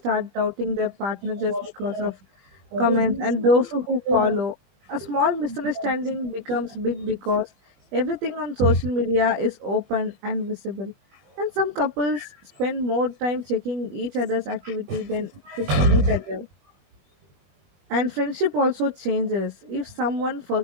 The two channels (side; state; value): left; late; 21 ms